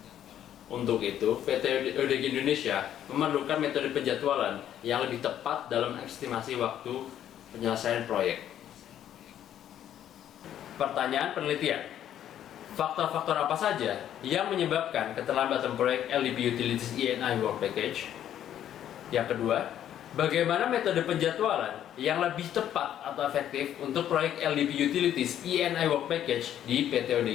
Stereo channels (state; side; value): quieter; right; 10.8 dB